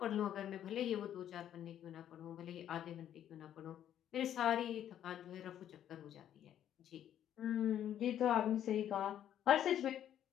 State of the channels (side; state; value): right; quieter; 10.6 dB